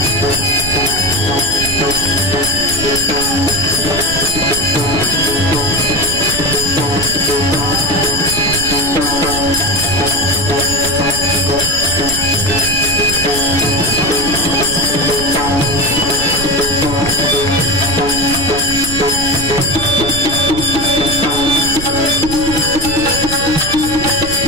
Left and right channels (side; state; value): right; noise; rumble, 7 dB below the sound